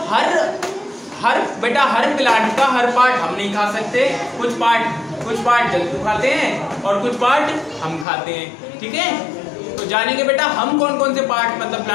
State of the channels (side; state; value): right; drops out; at 8.1 s